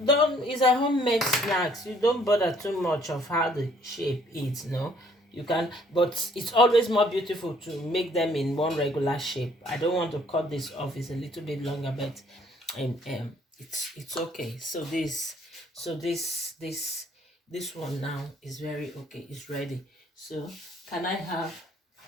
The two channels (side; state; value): both; normal; correlation 0.62